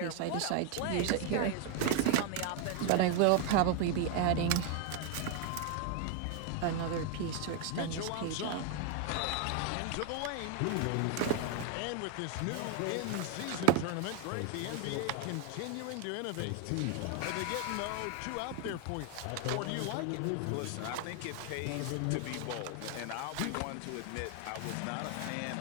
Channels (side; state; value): both; different; correlation 0.01